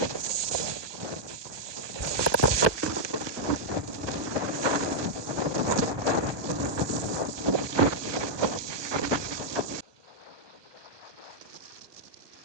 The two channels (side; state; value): left; late; 1.2 ms